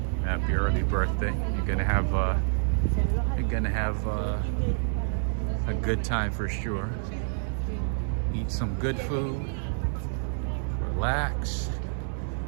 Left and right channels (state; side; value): silent; left; digital silence